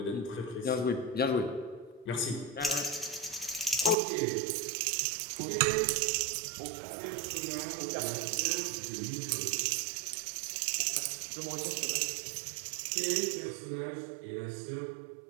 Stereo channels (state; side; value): drops out; left; at 4.0 s